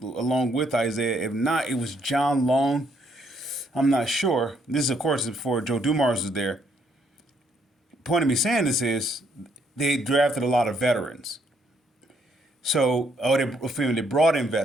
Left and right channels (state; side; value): normal; both; correlation 0.70